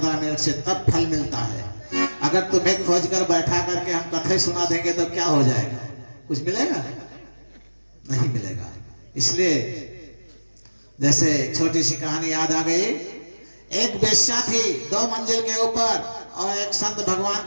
मिनट से, तब फल मिलता है। अगर तुम्हें खोज कर बैठा करके हम कथे सुना देंगे तो क्या हो जाएगा? कुछ मिलेगा? नहीं मिलेगा। इसलिए जैसे छोटी सी कहानी याद आ गई। एक वेश्या थी 2 मंजिल के ऊपर, और एक संत भगवान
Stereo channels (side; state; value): both; inverted; correlation -1.00